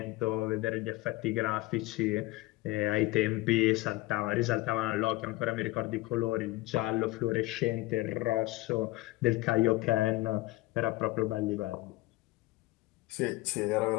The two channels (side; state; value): right; quieter; 19.5 dB